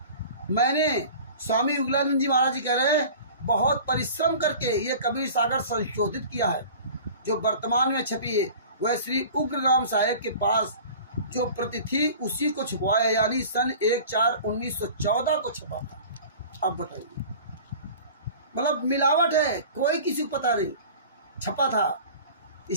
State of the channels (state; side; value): inverted; both; correlation -0.41